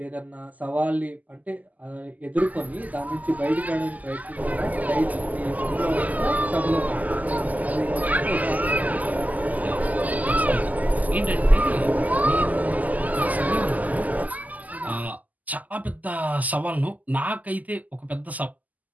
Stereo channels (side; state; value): left; late; 0.079 ms